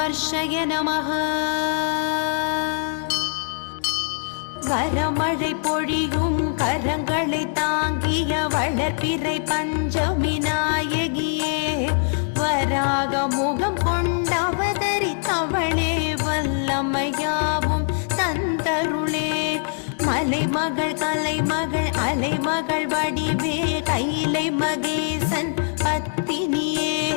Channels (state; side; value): silent; right; 62 dB below the other